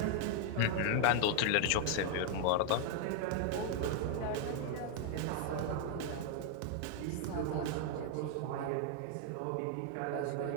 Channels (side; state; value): both; different; correlation 0.00